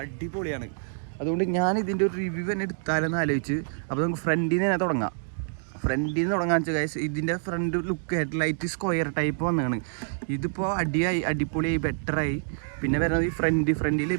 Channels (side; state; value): left; silent; digital silence